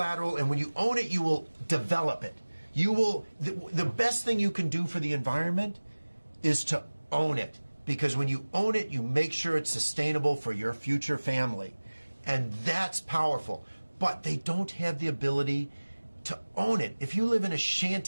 and when you own it, you will develop it. You will. The best thing you can do for the environment is to own it, because when you own it, you make sure it's sustainable for your future family, and that's powerful. But they don't have the ability to own it. If you live in a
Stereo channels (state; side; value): inverted; both; correlation -1.00